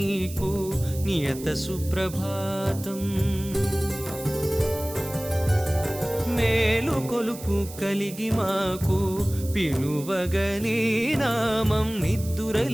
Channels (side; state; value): right; noise; hiss, 15 dB below the sound